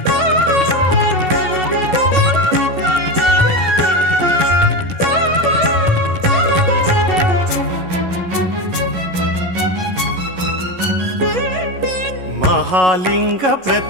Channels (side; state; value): left; late; 11 ms